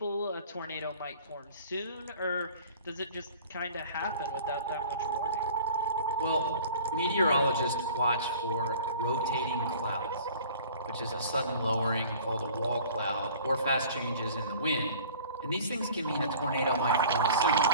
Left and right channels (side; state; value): both; inverted; correlation -0.46